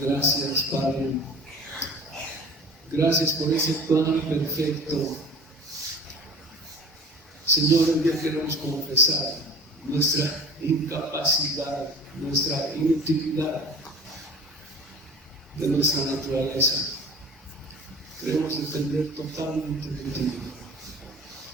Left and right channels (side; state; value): both; normal; correlation 0.41